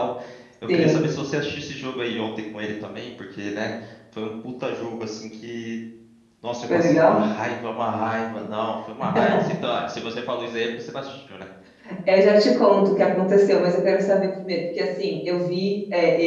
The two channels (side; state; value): both; identical; correlation 1.00